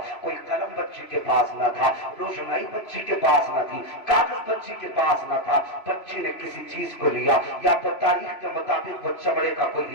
کوئی قلم بچی کے پاس نہ تھا, روشنائی بچی کے پاس نہ تھی, کاغذ بچی کے پاس نہ تھا. بچی نے کسی چیز کو لیا, یا تو تاریخ کے مطابق وہ چمڑے کا کوئی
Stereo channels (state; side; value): late; right; 3.0 ms